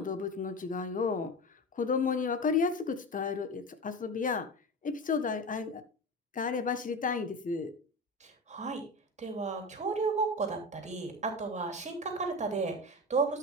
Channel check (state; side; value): normal; both; correlation 0.26